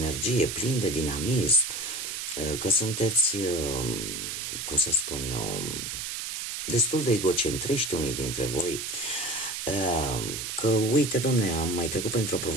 plini de dinamism, că sunteți, cum să spun eu, destul de egocentriști unii dintre voi, că uite, domne, am mai trecut printr-o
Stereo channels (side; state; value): right; noise; hiss, 5 dB below the sound